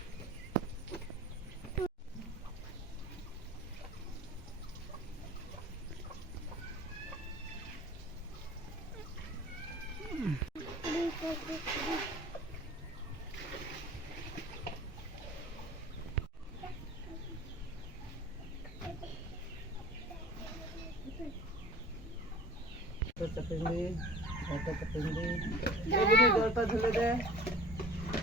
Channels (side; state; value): both; normal; correlation 0.44